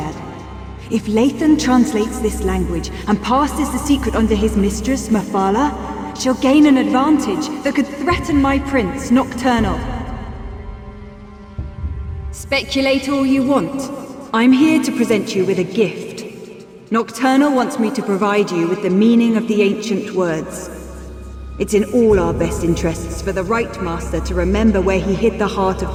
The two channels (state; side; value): identical; both; correlation 1.00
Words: If Lathan translates this language and passes the secret on to his mistress, Mephala, she'll gain an advantage that could threaten my prince, Nocturnal. Speculate all you want. I'm here to present you with a gift. Nocturnal wants me to provide you with the meaning of the ancient words. It's in all our best interests for the Right Master to remember where he hid the heart of